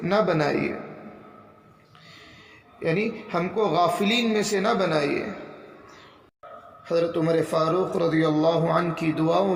نہ بنائیے، یعنی ہم کو غافلین میں سے نہ بنائیے۔ حضرت عمر فاروق رضی اللہ عنہ کی دعاؤں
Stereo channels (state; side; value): identical; both; correlation 1.00